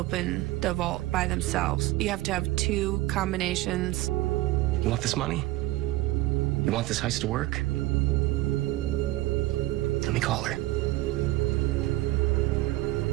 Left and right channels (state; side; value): quieter; left; 17.6 dB